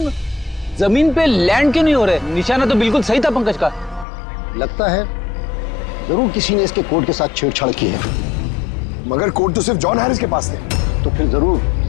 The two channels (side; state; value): right; drops out; at 4.0 s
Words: जमीन पे लैंड क्यों नहीं हो रहे? निशाना तो बिल्कुल सही था पंकज का। लगता है जरूर किसी ने इसके कोड के साथ छेड़छाड़ की है। मगर कोड तो सिर्फ जॉन हैरिस के पास थे। तो फिर